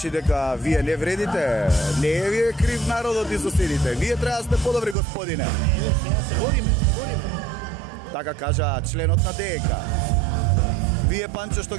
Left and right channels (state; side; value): drops out; left; at 5.0 s